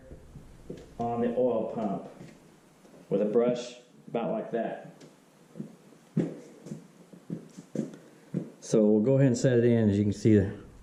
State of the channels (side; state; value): both; identical; correlation 1.00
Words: on the oil pump with a brush about like that. So we'll go ahead and set it in. As you can see, the